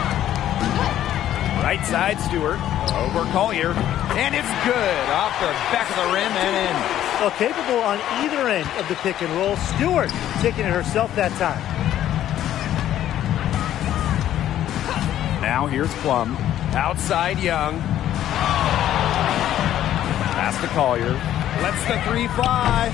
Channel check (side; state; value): right; quieter; 11.9 dB